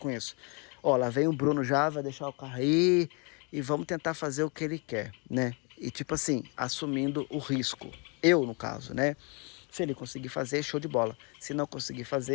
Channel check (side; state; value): right; quieter; 33.5 dB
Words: isso? Ó, lá vem o Bruno já, vai deixar o carro aí e vamos tentar fazer o que ele quer, né? E tipo assim, assumindo o risco. Eu, no caso, né? Se ele conseguir fazer, show de bola. Se não conseguir